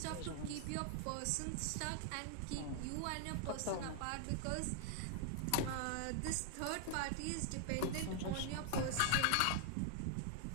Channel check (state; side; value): different; both; correlation 0.00